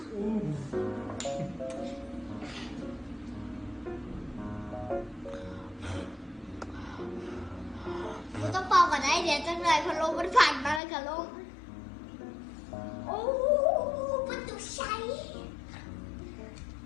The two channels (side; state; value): right; drops out; at 10.8 s